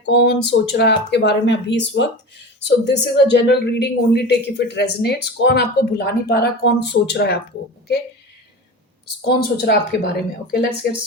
कौन सोच रहा है आपके बारे में अभी इस वक्त। So this is a general reading, only take if it resonates. कौन आपको भुला नहीं पा रहा, कौन सोच रहा है आपको, ओके कौन सोच रहा है आपके बारे में। Okay, let's get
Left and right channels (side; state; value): both; normal; correlation 0.30